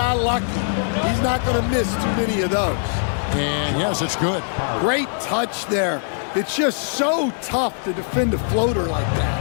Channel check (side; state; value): right; silent; 64 dB below the other